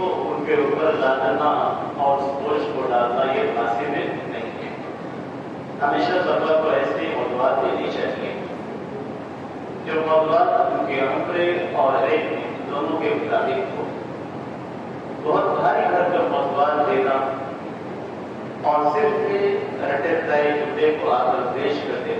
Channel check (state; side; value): identical; both; correlation 1.00